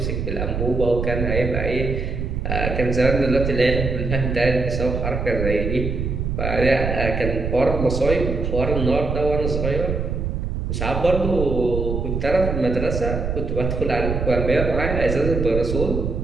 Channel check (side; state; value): right; noise; rumble, 2 dB below the sound